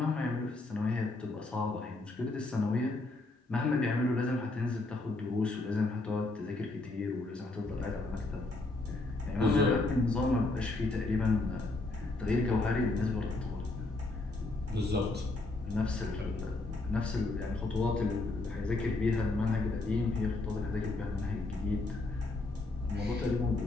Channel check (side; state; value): right; quieter; 3.0 dB